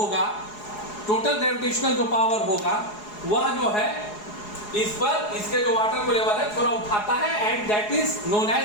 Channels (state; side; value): late; right; 4.8 ms